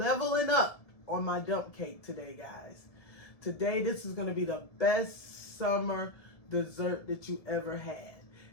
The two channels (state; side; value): late; right; 1.6 ms